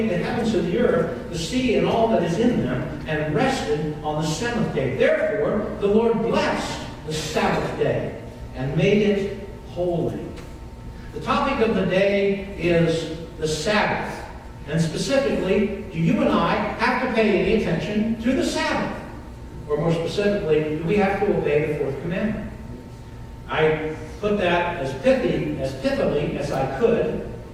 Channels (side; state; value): both; identical; correlation 1.00